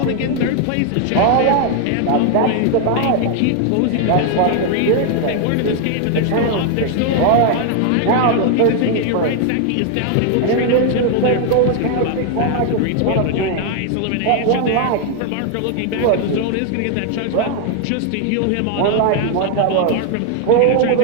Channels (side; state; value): both; different; correlation 0.00